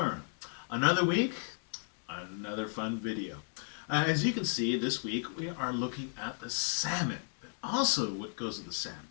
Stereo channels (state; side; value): silent; right; 55 dB below the other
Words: Another week, another fun video. As you can see, this week we are looking at the salmon. But also what goes with the